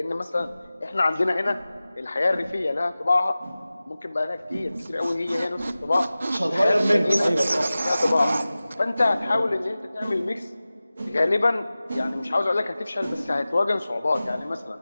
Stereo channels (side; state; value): both; inverted; correlation -0.97